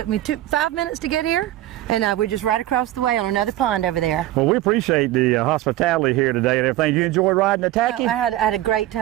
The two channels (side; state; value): left; quieter; 14.8 dB